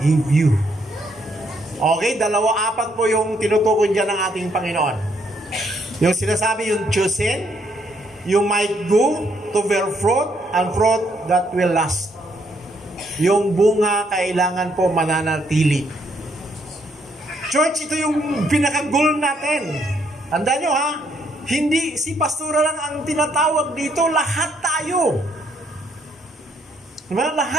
you. Okay, 2-4 po yung tinutukoy dyan ng ating Panginoon. Yung sinasabi, yung chosen, you might go to bear fruit and fruit that will last. Yung bunga kailangan po mananatili. Church, ito yung pinaka-goal natin. Tandaan nyo ha, hindi si pastora lang ang tinatawag dito, lahat tayo. Diba?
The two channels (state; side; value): normal; both; correlation 0.72